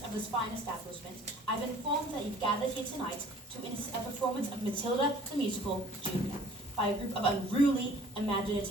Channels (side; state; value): both; normal; correlation 0.52